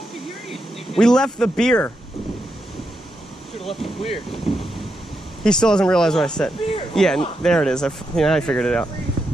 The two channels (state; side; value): normal; both; correlation 0.84